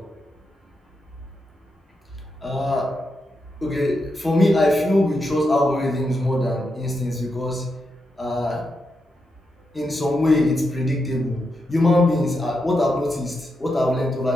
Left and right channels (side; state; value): both; normal; correlation 0.85